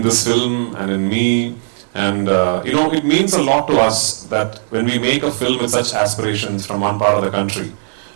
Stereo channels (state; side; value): silent; left; 68 dB below the other